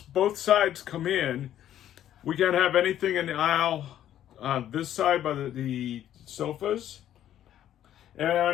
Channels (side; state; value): right; quieter; 11.4 dB